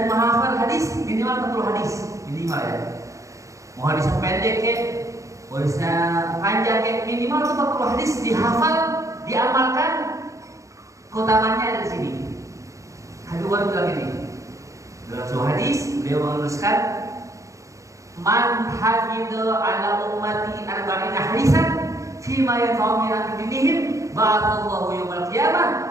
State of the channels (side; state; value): left; late; 0.15 ms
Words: menghafal hadis minimal 40 hadis minimal ya. Mau hadisnya pendek ya, hadisnya panjang ya, minimal 40 hadis dihafal, diamalkan. Keutamaannya ada di sini. Habib Umar bilang ini dalam sebuah hadis beliau menuliskan, man hafidha ala ummati arba'ina hadisan fima yanfa'u min dinihim ba'athallahu yawmal